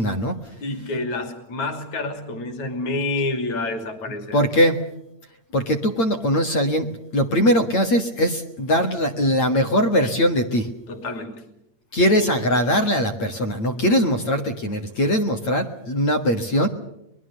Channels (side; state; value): right; late; 8.8 ms